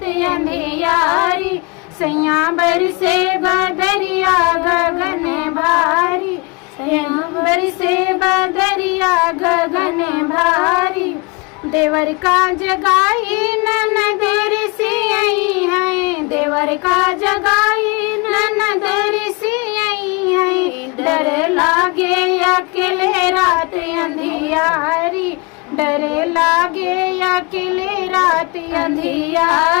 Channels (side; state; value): right; quieter; 28.3 dB